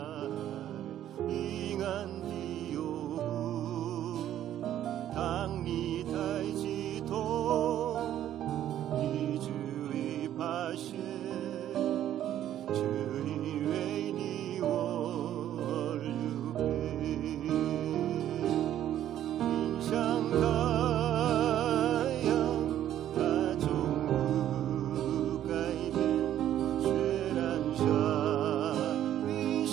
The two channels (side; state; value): left; quieter; 11.6 dB